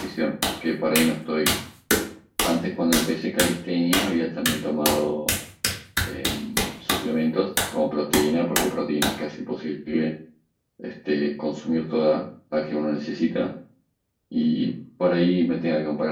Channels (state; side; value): identical; both; correlation 1.00